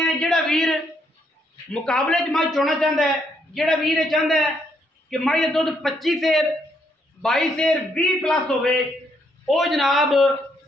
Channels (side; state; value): both; normal; correlation 0.74